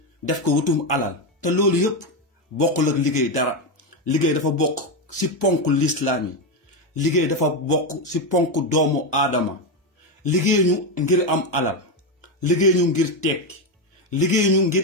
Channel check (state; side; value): normal; both; correlation 0.10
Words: def ko wutum alal te loolu yëpp bokkul ak liggéey dara liggéey dafa bokk si ponk lislaam yi liggéey dafa bokk si ponk doomu aadama liggéey ñu ngir am alal liggéey ñu ngir tekki liggéey ñu ngir